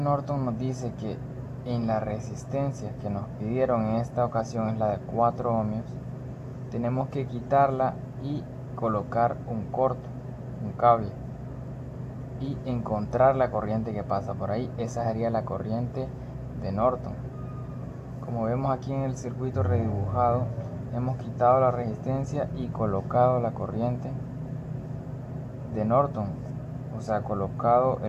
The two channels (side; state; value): both; identical; correlation 1.00